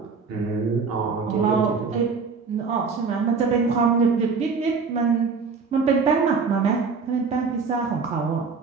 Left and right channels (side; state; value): left; quieter; 5.0 dB